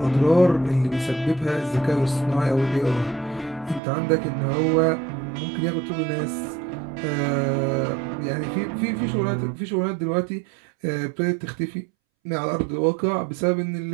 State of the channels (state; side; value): drops out; left; at 3.8 s